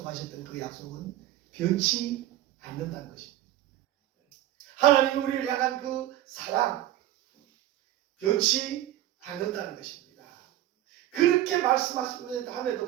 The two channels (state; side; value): quieter; left; 13.7 dB